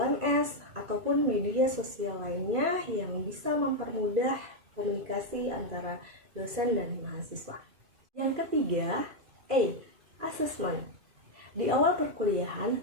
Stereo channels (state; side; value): late; left; 2.4 ms